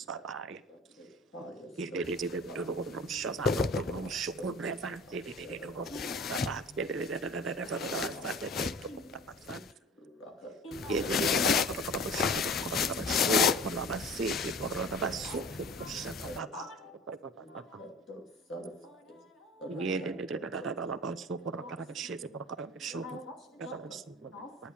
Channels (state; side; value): normal; both; correlation 0.41